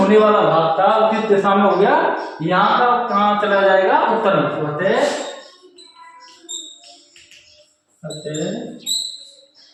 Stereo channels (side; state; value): both; identical; correlation 1.00